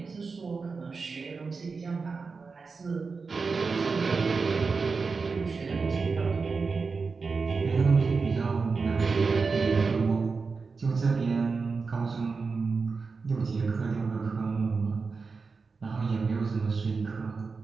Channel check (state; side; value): quieter; left; 4.6 dB